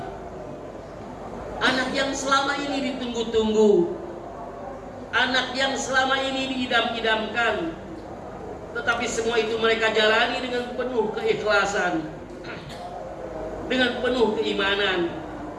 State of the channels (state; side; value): identical; both; correlation 1.00